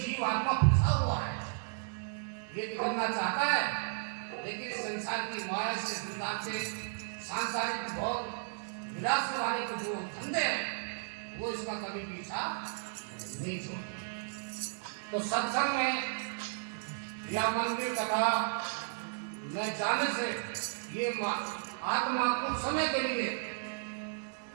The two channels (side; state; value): left; silent; digital silence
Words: फंसा हुआ है, ये निकलना चाहता है, लेकिन संसार की माया से, संसार के सांसारिक भोग विलास वाले के जो धंधे हैं वो इसका कभी पीछा नहीं छोड़ते। तो सत्संग में या मंदिर कथा में जाने से ये आत्मा कुछ समय के लिए